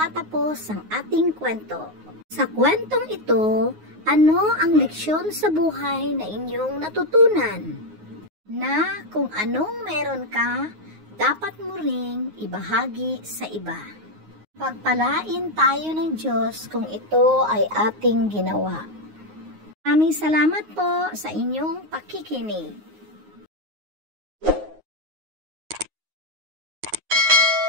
ang ating kwento. Sa kwentong ito, ano ang leksyon sa buhay na inyong natutunan? Na kung anong meron ka, dapat mo ring ibahagi sa iba. Pagpalain tayo ng Diyos kung ito ay ating ginawa. Maraming salamat po sa inyong pakikinig.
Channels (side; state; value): left; late; 9.5 ms